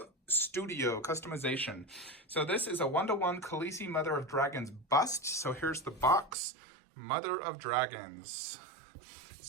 Studio Customization. So this is a 1-to-1 Khaleesi Mother of Dragons bust. So here's the box, Mother of Dragons.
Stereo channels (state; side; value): drops out; left; at 6.3 s